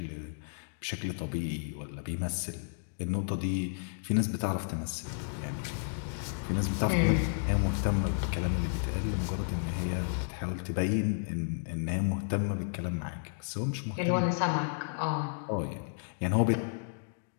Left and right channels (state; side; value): silent; right; digital silence